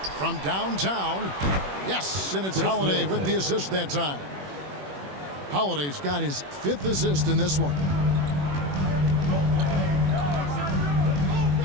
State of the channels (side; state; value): left; late; 21 ms